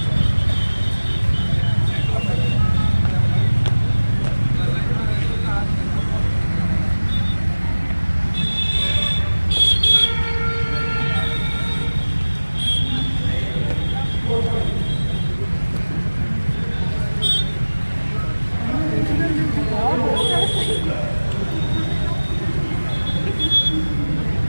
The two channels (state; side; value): inverted; both; correlation -1.00